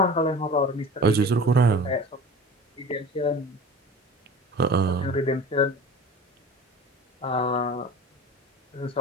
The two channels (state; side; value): normal; both; correlation 0.38